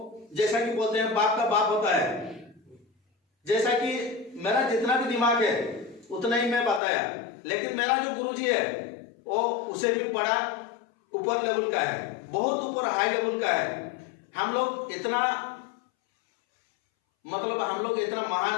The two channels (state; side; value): drops out; right; at 6.8 s